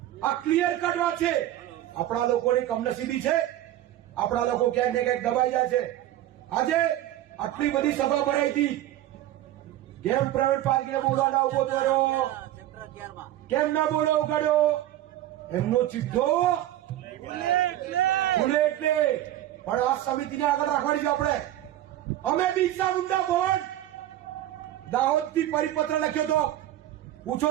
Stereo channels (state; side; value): quieter; left; 13.4 dB